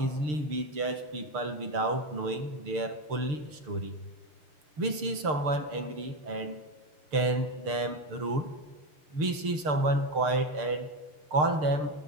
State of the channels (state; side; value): late; left; 6.6 ms